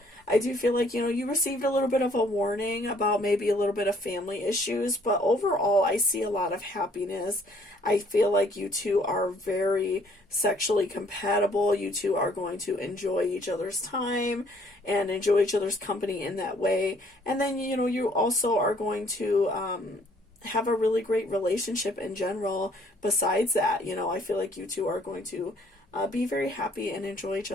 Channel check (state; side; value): normal; both; correlation 0.62